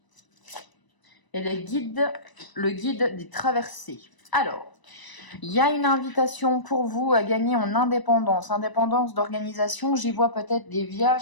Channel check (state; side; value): late; right; 1.0 ms